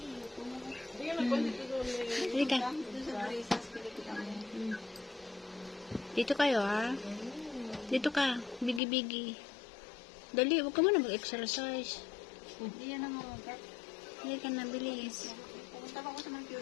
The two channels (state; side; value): drops out; right; at 8.8 s